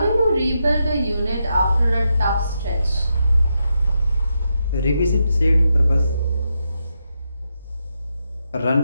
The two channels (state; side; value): inverted; both; correlation -0.84